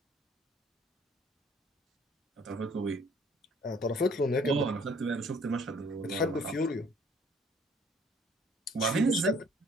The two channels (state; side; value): normal; both; correlation 0.58